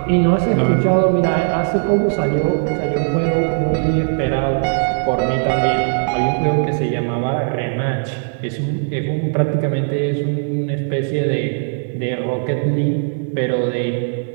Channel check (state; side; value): silent; left; 58 dB below the other